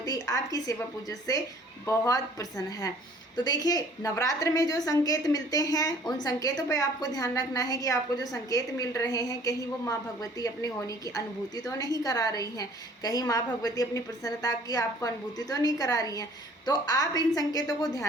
आपकी सेवा पूजा से बहुत प्रसन्न है? तो देखिए, नवरात्र में जो संकेत मिलते हैं उन संकेतों पे आपको ध्यान रखना है कि आपको जो संकेत मिल रहे हैं, कहीं वो माँ भगवती अपने होने की अनुभूति तो नहीं करा रही हैं, कहीं माँ भगवती अपनी प्रसन्नता की आपको अनुभूति तो नहीं करा रही हैं। तो आप इन संकेतों को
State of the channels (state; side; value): normal; both; correlation 0.54